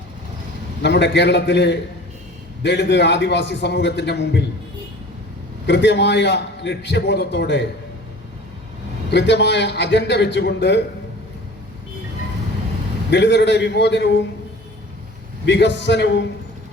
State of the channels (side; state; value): both; normal; correlation 0.44